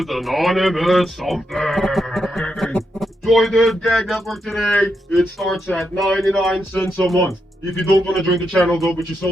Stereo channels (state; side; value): normal; both; correlation 0.83